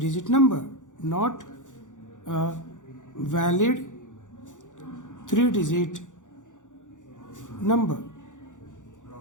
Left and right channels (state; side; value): late; right; 0.86 ms